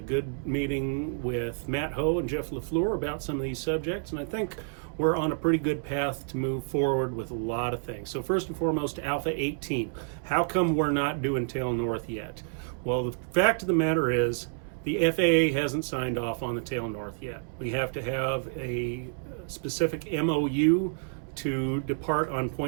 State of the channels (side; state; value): left; silent; 59 dB below the other